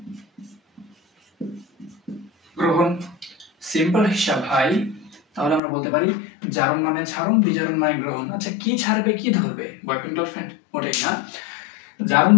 গ্রহণ। সিম্পল হিসাব ভাই। তাহলে আমরা বলতে পারি জারণ মানে ছাড়ন, বিজারণ মানে গ্রহণ। আচ্ছা, কি ছাড়বে কি ধরবে? বয়ফ্রেন্ড গার্লফ্রেন্ড ওটাই না। জারণ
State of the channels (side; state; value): right; drops out; at 5.6 s